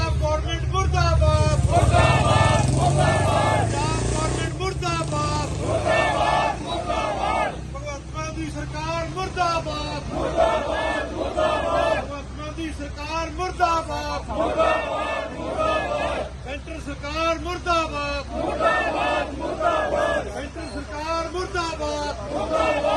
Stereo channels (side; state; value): both; identical; correlation 1.00